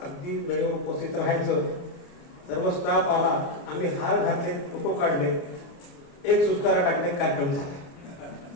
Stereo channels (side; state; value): right; late; 29 ms